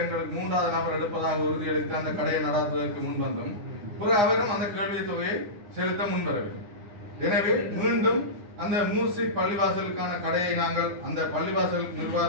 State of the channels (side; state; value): left; late; 9.8 ms